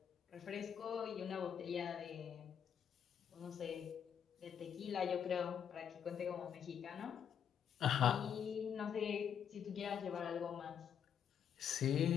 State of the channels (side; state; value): right; quieter; 8.3 dB